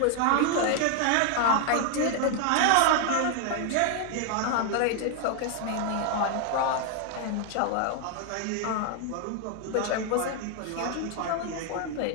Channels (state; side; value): different; both; correlation 0.00